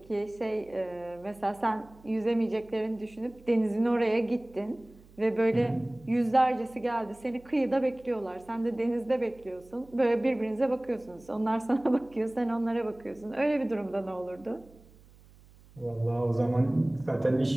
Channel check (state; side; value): noise; right; hum, 25 dB below the sound